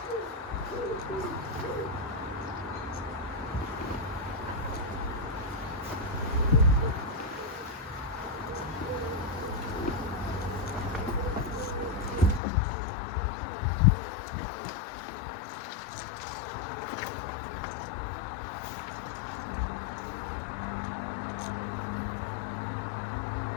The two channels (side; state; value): right; drops out; at 12.4 s